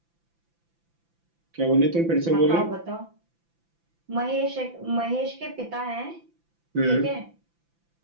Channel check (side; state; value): left; late; 5.9 ms